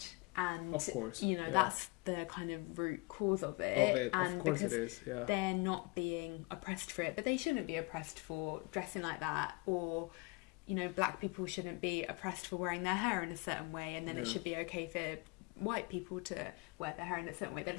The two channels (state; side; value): quieter; right; 26.5 dB